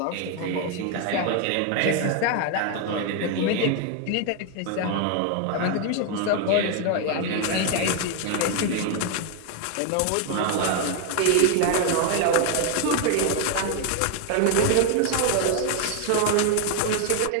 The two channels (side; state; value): both; different; correlation 0.00